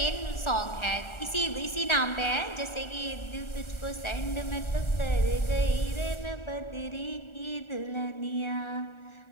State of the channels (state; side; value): late; right; 1.4 ms